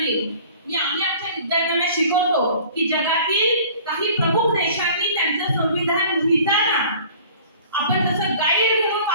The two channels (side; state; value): both; inverted; correlation -0.48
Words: नाही. आम्ही आमच्या विद्यार्थ्यांना शिकवतो की जगातील काही प्रमुख देशांनी त्यांचं संविधान लिहिताना आपण जसं गाईड म्हणून